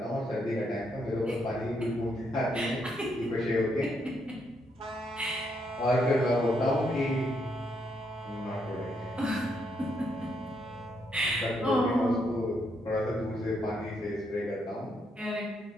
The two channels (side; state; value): both; normal; correlation 0.76